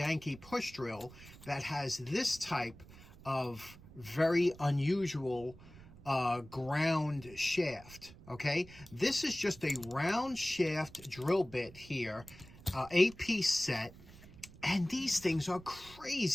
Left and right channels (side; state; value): right; noise; rumble, 19 dB below the sound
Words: push drill, that has this type of very unusual ground shaft, okay? This is just a round shaft drill bit here, 8-piece set, and these things are